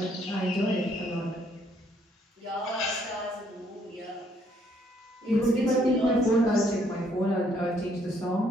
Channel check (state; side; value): normal; both; correlation 0.68